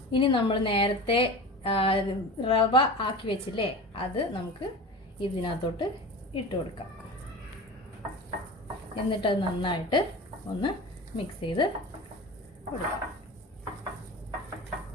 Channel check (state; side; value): normal; both; correlation 0.32